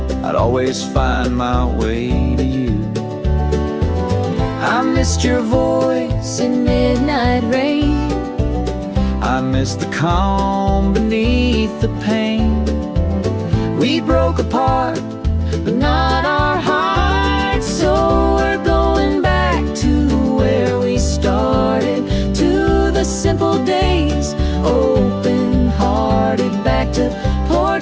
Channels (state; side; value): identical; both; correlation 1.00